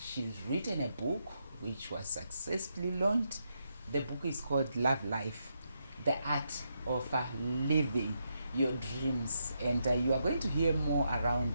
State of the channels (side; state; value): both; inverted; correlation -0.81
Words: written a book which was successfully launched. The book is called Love Life, The Art of Living Your Dreams. And you are going to hear more